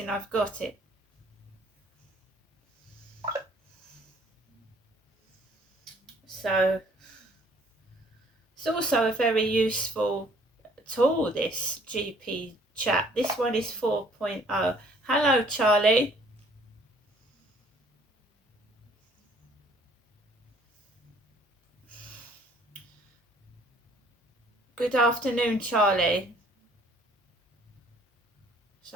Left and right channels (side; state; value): both; normal; correlation 0.59